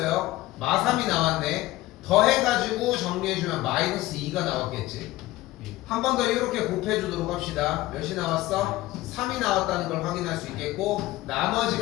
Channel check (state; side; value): quieter; right; 17.3 dB